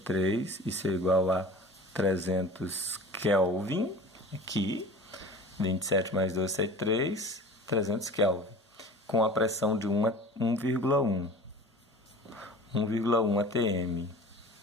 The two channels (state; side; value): normal; both; correlation 0.40